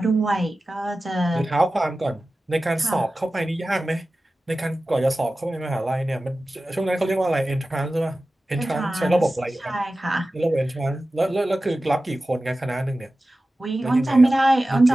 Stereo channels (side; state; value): both; normal; correlation 0.95